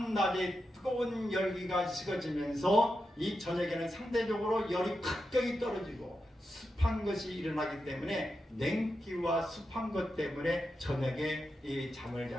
뜨거운 열기가 식어지면서 이 저녁에는 상대적으로 열이 갑자기 떨어지고 습한 것이 일어나기 때문에 냉기와 습한 것 때문에 저녁에 이 잠을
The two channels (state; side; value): normal; both; correlation 0.88